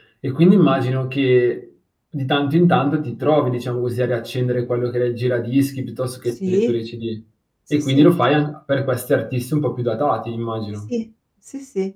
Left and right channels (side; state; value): both; identical; correlation 1.00